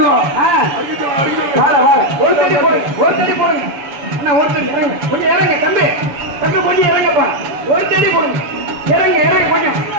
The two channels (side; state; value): left; late; 7.1 ms